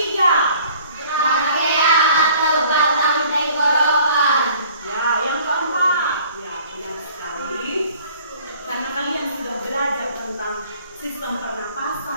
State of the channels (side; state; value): both; inverted; correlation -0.53